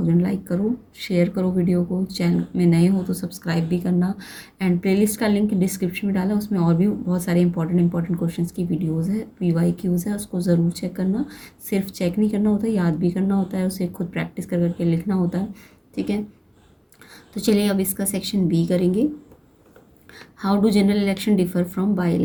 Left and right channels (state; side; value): identical; both; correlation 1.00